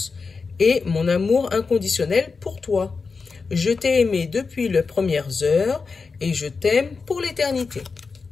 et mon amour inconditionnel pour toi. Je t'ai aimé depuis les premières heures et je t'aime pour l'éternité.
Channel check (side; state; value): right; quieter; 4.7 dB